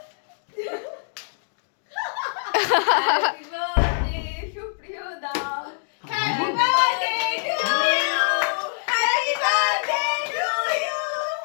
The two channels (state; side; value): silent; right; digital silence